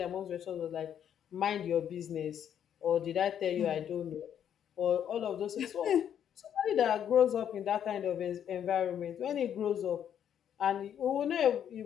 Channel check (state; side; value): quieter; right; 9.3 dB